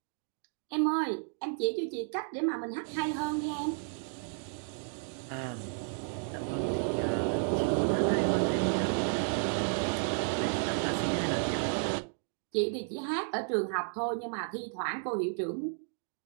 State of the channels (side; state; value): left; silent; 56 dB below the other